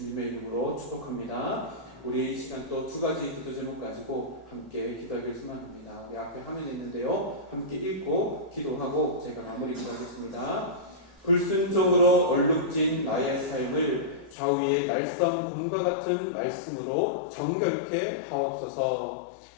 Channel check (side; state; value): right; drops out; at 14.4 s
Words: 이름으로 축복합니다. 우리 이 시간 또 두 가지 기도 제목 가지고 함께 기도하기를 소망합니다. 내 앞에 화면이 있는데요, 함께 읽고 기도하고 제가 마무리 기도하겠습니다. 불순종으로 얼룩진 나의 삶을 좌우의 날성 곰과 같은 말씀으로 정결케 하옵소서.